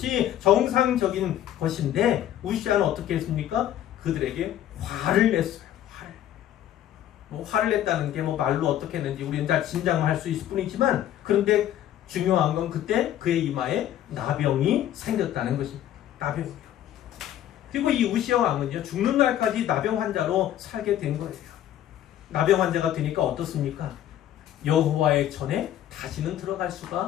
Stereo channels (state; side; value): quieter; right; 11.8 dB